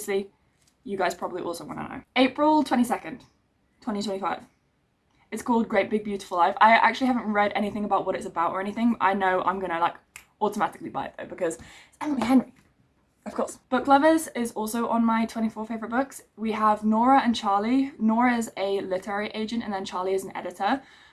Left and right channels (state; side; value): identical; both; correlation 1.00